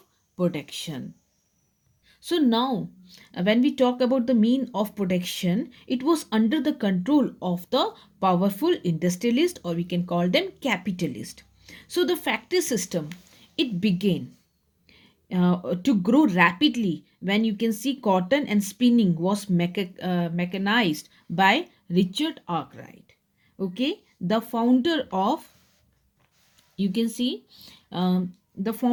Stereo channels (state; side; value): identical; both; correlation 1.00